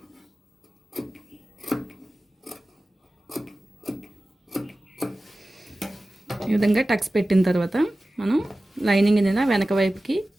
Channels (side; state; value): both; normal; correlation 0.96